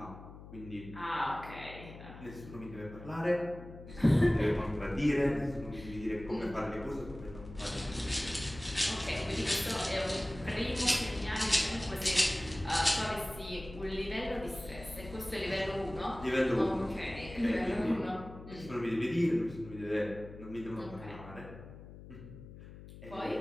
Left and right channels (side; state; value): left; noise; hum, 15 dB below the sound